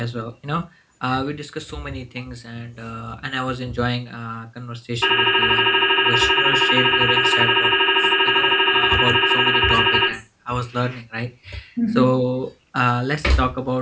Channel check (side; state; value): both; identical; correlation 1.00